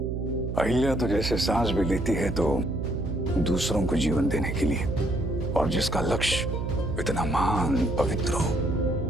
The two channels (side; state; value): right; noise; hum, 3 dB below the sound